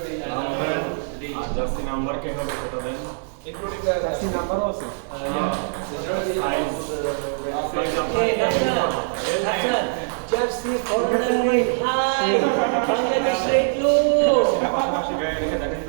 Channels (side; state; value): left; silent; digital silence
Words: জার্সি নাম্বার কে হবে সেটা দেন ইনক্লুডিং দ্য জার্সি নাম্বারও আছে jersey foreigner high Bangladesh rate low পাশাপাশি গায়ে রেখে দেখেন